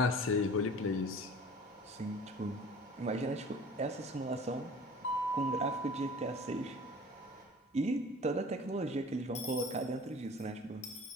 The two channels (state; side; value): normal; both; correlation 0.44